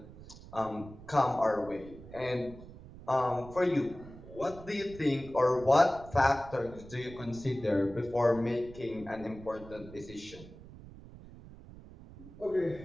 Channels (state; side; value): noise; right; rumble, 17 dB below the sound